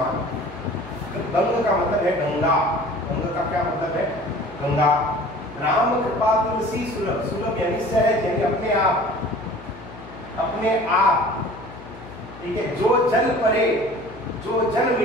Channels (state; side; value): noise; left; hum, 17 dB below the sound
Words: गंग का मतलब है गंगा, गंग का क्या मतलब है? गंगा। राम कृपा तुलसी सुलभ, सुलभ यानी सहज, यानी अपने आप, ठीक है। जो जल परे, जो जल